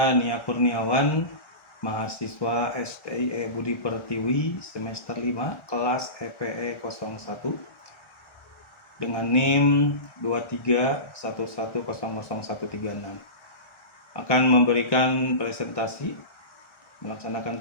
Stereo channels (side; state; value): right; late; 1.3 ms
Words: Nia Kurniawan, mahasiswa STIE Budi Pertiwi semester 5 kelas EPE 01 dengan NIM 2311000136. Akan memberikan